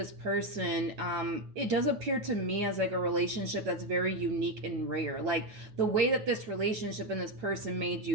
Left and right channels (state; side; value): late; left; 8.9 ms